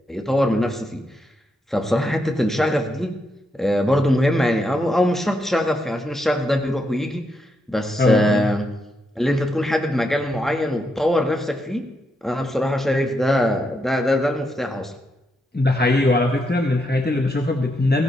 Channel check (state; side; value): normal; both; correlation 0.81